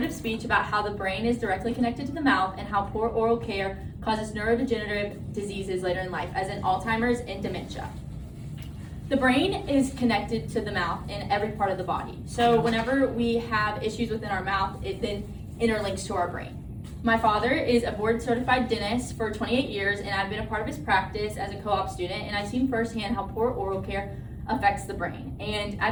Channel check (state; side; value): identical; both; correlation 1.00